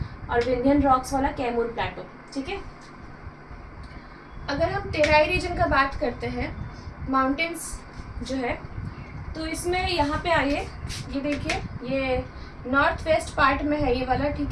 और विंध्यन रॉक्स वाला कैमूर प्लाटो। ठीक है, अगर हम तेराई रीजन का बात करते हैं, माउंटेन्स जो है, तो इसमें यहाँ पे आइए, ये देखिए, ये नॉर्थ वेस्ट पार्ट में है ये वाला। ठीक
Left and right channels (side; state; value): both; identical; correlation 1.00